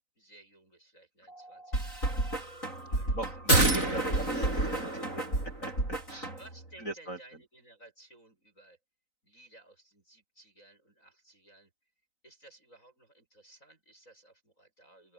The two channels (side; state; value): right; late; 3.9 ms